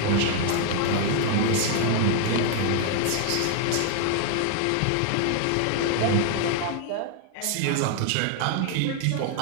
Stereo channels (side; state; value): both; different; correlation 0.00